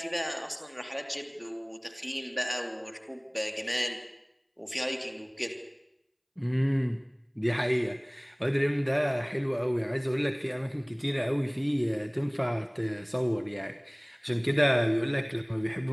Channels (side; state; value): both; identical; correlation 1.00